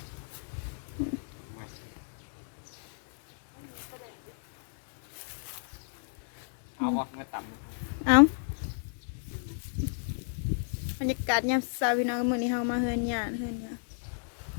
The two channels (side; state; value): right; silent; 57 dB below the other